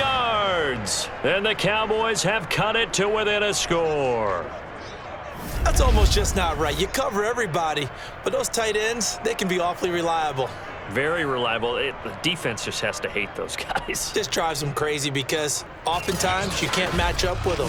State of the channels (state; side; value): identical; both; correlation 1.00